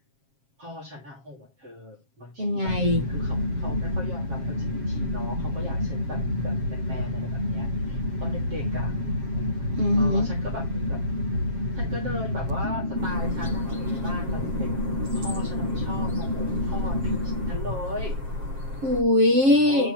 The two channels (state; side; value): late; left; 7.4 ms